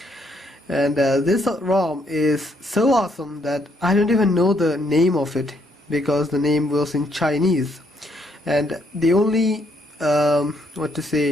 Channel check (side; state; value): both; normal; correlation 0.72